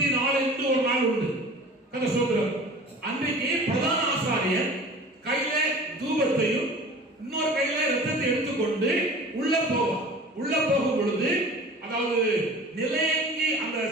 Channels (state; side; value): normal; both; correlation 0.42